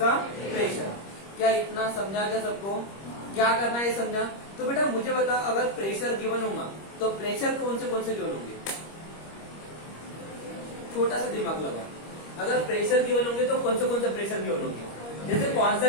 प्रेशर। क्या इतना समझा क्या सबको? क्या करना है समझा? तो बेटा मुझे बता, अगर प्रेशर गिवन होगा तो प्रेशर कौन से गिवन होंगे? छोटा सा दिमाग लगा। अगर प्रेशर गिवन होंगे तो कौन से प्रेशर गिवन होंगे? जैसे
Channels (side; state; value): right; late; 25 ms